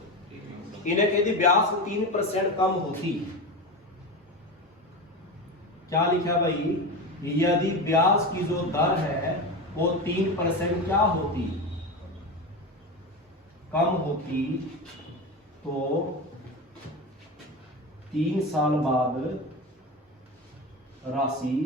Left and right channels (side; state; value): both; normal; correlation 0.22